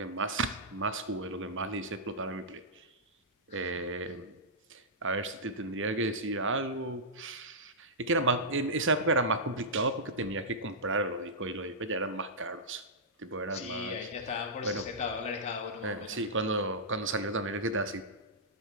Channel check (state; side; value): normal; both; correlation -0.13